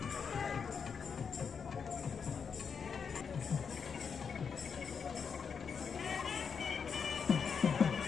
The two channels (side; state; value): right; quieter; 6.3 dB